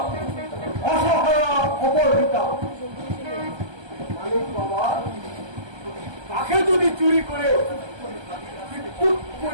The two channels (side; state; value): left; late; 1.3 ms